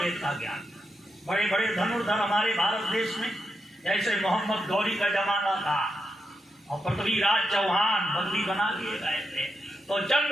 का ज्ञान। बड़े बड़े धनुर्धर हमारे भारत देश में जैसे मोहम्मद गौरी का जमाना था और पृथ्वीराज चौहान बंदी बना लिए गए थे, तो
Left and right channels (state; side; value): normal; both; correlation 0.85